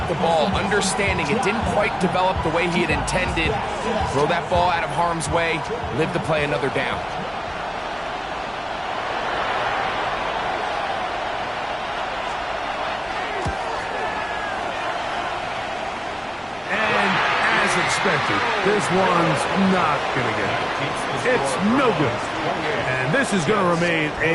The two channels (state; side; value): identical; both; correlation 1.00